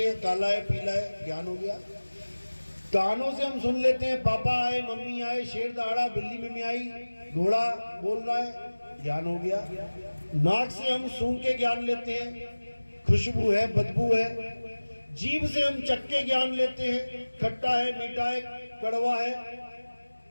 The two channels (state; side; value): inverted; both; correlation -1.00